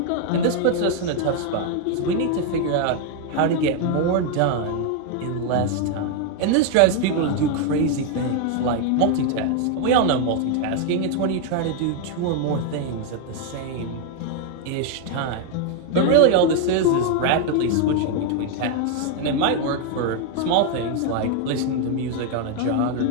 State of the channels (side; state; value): both; different; correlation 0.01